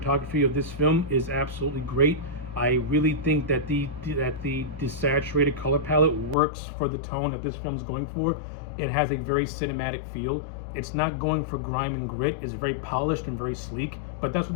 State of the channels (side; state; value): right; drops out; at 6.4 s